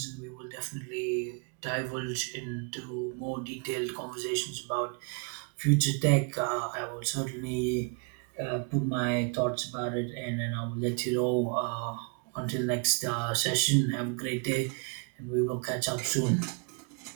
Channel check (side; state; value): left; quieter; 36.1 dB